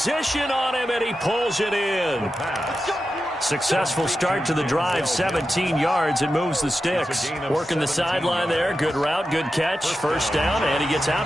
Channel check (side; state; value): both; normal; correlation 0.90